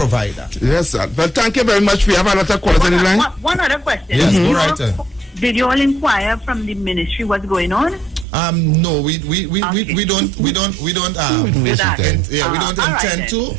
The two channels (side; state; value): left; drops out; at 8.2 s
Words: that. Yes, sir. But thank you very much. We have a lot of callers on the line. One other question. Yes, go right. Did you all inquire from the ministry what's going on? No, we don't do that. We don't intend to.